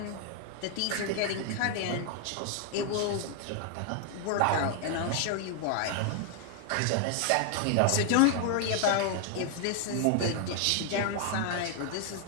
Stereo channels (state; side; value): different; both; correlation 0.00